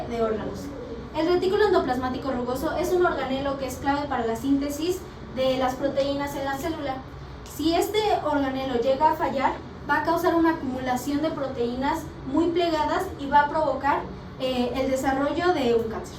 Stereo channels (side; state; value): both; identical; correlation 1.00